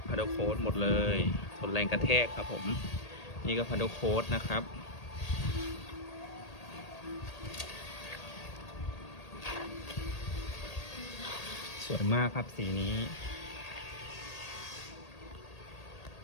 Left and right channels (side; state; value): right; late; 1.8 ms